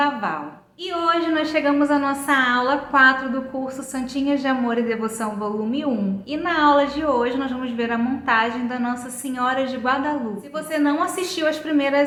Val. E hoje nós chegamos à nossa aula 4 do curso Santinhas de Amor e Devoção volume 1. E na aula de hoje nós vamos ver a montagem da Nossa Senhora de Guadalupe. Se você não assistiu às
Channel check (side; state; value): both; identical; correlation 1.00